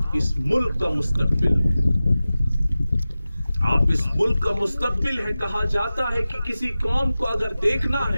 اس ملک کا مستقبل ہیں. آپ اس ملک کا مستقبل ہے. کہا جاتا ہے کہ کسی قوم کو اگر دیکھنا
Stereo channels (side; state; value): both; inverted; correlation -0.96